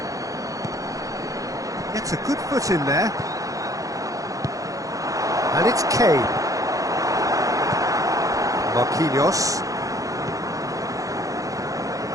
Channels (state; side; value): late; left; 0.17 ms